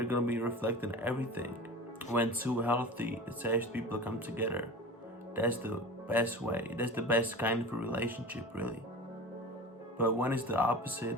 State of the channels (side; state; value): both; normal; correlation 0.34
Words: gonna be reflecting everything. When two healthy, attached people come together, that's the best way. That's the best kind of a relationship, really. But when it's the